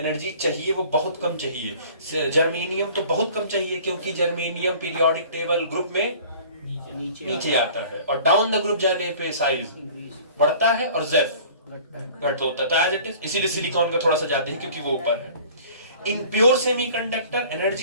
चाहिए वो बहुत कम चाहिए। जर्मेनियम तो बहुत कम चाहिए क्योंकि जर्मेनियम पीरियोडिक टेबल ग्रुप में नीचे आता है, और डाउन द ग्रुप जाने पे साइज बढ़ता है और जेफ घट होता है। तो एज इट इज इसीलिए सिलिकॉन का थोड़ा सा ज्यादा है क्योंकि वो ऊपर है। In pure semiconductor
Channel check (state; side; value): inverted; both; correlation -0.47